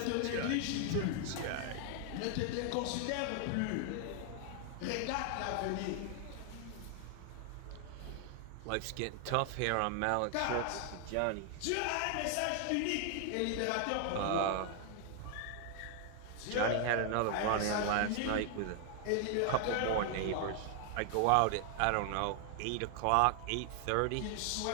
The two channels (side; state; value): both; different; correlation 0.00